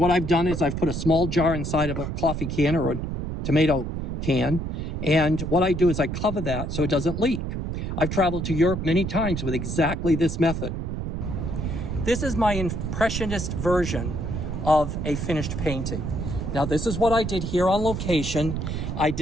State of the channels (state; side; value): noise; right; rumble, 3 dB below the sound